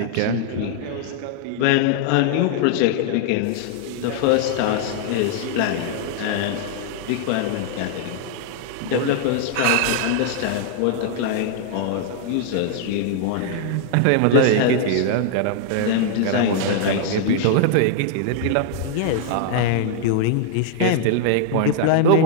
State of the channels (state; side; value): different; both; correlation -0.01